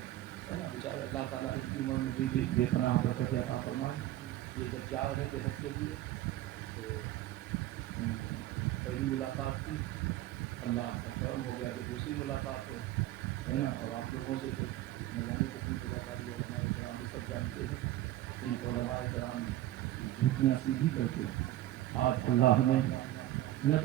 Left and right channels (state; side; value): quieter; left; 14.5 dB